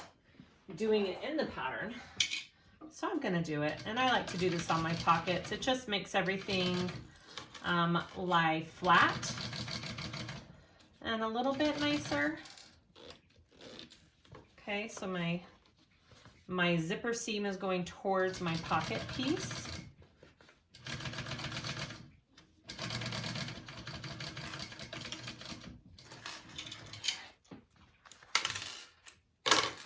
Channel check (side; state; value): both; identical; correlation 1.00